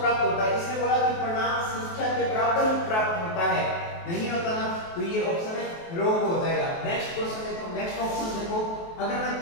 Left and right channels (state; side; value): late; right; 23 ms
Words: प्राप्त होता है? इसने बोला कि परिणाम संख्या के बराबर ही प्राप्त होता है, नहीं होता ना, तो ये ऑप्शन है रॉन्ग हो जाएगा। नेक्स्ट क्वेश्चन देखो, नेक्स्ट ऑप्शन देखो, अगर मैं